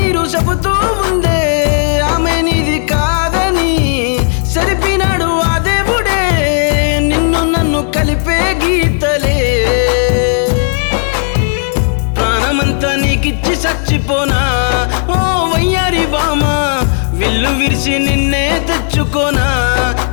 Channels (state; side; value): silent; right; 60 dB below the other